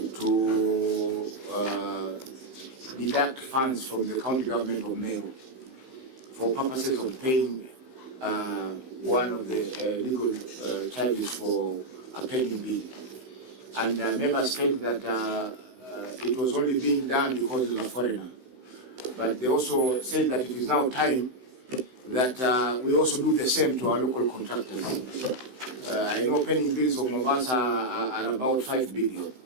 to deduct funds from the county government of Meru for purposes of paying one of the legal charges for a pending bill. And members said that it was only being done because it was a foreigner. But they also said that it is now time that we also do the same to our local contractors. I know pending bills of Mombasa are about 5 billion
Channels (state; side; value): late; left; 16 ms